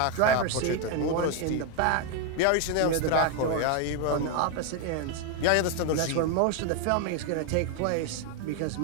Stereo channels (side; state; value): both; different; correlation 0.01